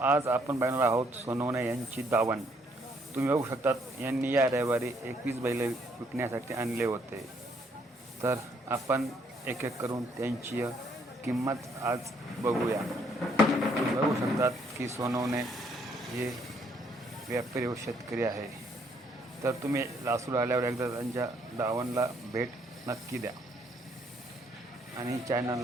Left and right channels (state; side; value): normal; both; correlation 0.68